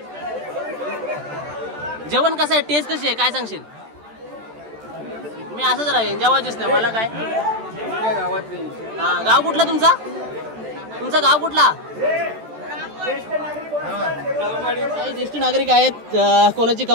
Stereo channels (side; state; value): left; late; 13 ms